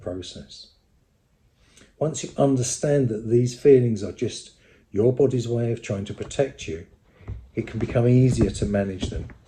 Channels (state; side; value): identical; both; correlation 1.00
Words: Once you understand that these feelings are just your body's way of trying to protect you, it can become easier to manage them.